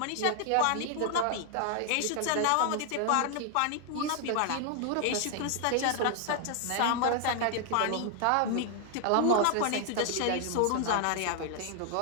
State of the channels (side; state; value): both; different; correlation 0.00